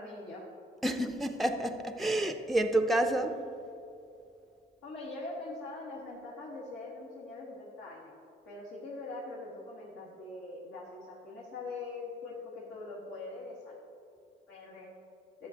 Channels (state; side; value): normal; both; correlation 0.73